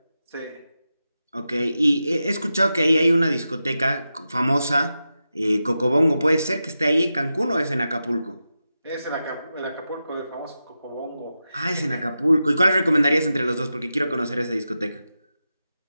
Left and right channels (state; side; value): inverted; both; correlation -0.91